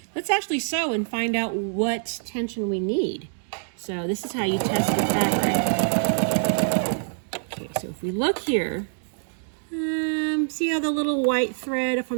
Let's actually sew and find out what tension we need. So this is how you test the fabric. Okay, so if we look here, see how the little white thread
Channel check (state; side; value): silent; left; digital silence